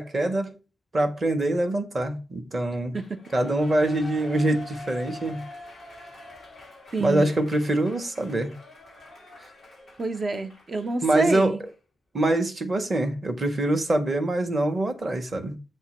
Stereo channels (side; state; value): both; normal; correlation 0.88